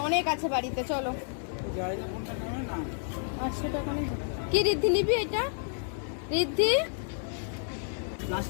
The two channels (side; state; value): right; silent; 58 dB below the other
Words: অনেক আছে বাড়িতে, চলো। 800 টাকা নেই কি রিদ্ধি নিবি? এটা রিদ্ধি